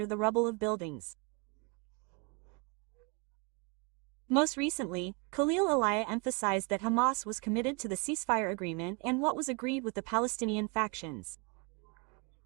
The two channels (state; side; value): quieter; left; 32.2 dB